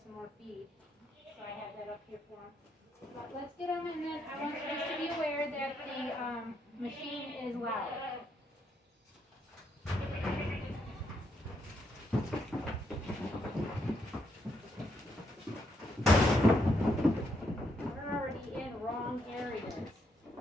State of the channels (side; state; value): both; normal; correlation 0.76